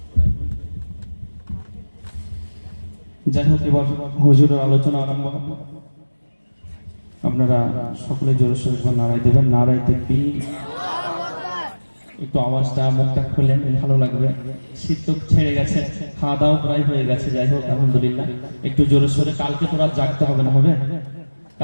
যাই হোক, এবার হুজুরের আলোচনা আরম্ভ হবে। আপনারা সকলে জোরে সোরে নারায় দেবেন, নারায় তাকবীর। একটু আওয়াজটা মুখটা খুলেন, ভালো লাগবে। শীত তো ছেড়ে গেছে, খাওয়া দাওয়া প্রায় হয়ে গেছে। যাই হোক, আলহামদুলিল্লাহ। একটু জোরে সোরে, কালকে তো রাত জাগতে হবে না, হবে?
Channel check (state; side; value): inverted; both; correlation -1.00